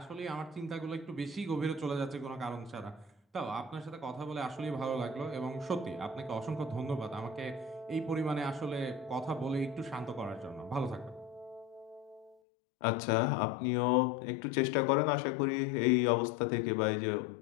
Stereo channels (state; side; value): drops out; right; at 12.4 s